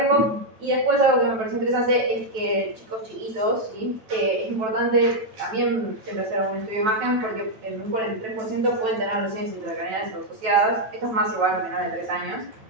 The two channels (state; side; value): late; left; 9.2 ms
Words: Y después algo que me pareció interesante es que chicos chiquitos, ¿sí? Es importante también siempre hacer un estudio de imagen, porque en un 43% pueden tener lesiones intracraneales asociadas. Esto es más igual a menores de 3 años,